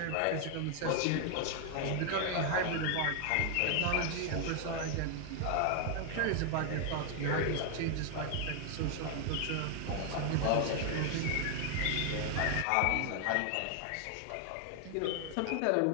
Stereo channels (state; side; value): different; both; correlation 0.00